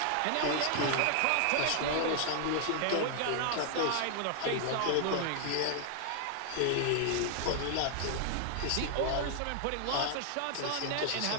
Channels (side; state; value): both; different; correlation 0.00